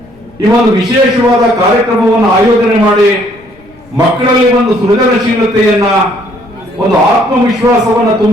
ಈ ಒಂದು ವಿಶೇಷವಾದ ಕಾರ್ಯಕ್ರಮವನ್ನು ಆಯೋಜನೆ ಮಾಡಿ ಮಕ್ಕಳಲ್ಲಿ ಒಂದು ಸೃಜನಶೀಲತೆಯನ್ನ ಒಂದು ಆತ್ಮವಿಶ್ವಾಸವನ್ನ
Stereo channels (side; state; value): left; noise; rumble, 27 dB below the sound